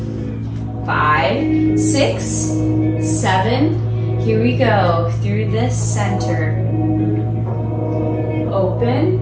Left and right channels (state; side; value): identical; both; correlation 1.00